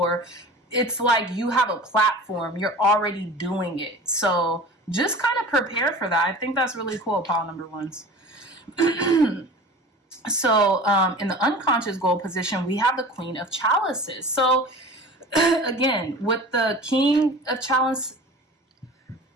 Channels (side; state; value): both; normal; correlation 0.39